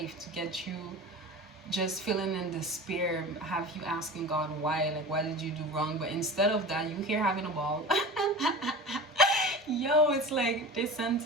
to get you just feeling in despair, have you asking God why, like, why did you do wrong? But instead of that, you here having a ball. Yo, it's like they sent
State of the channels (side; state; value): both; normal; correlation 0.34